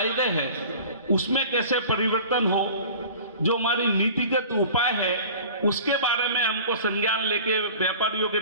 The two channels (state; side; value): inverted; both; correlation -0.42